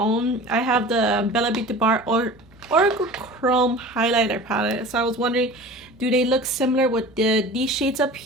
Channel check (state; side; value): noise; right; hum, 29 dB below the sound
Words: I have the Bella Beauty Bar Oracle Chrome highlighter palette. So I was wondering, do they look similar with these shades up